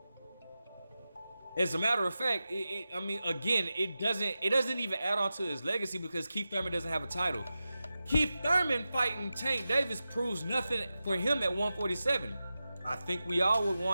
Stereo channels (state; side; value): inverted; both; correlation -0.93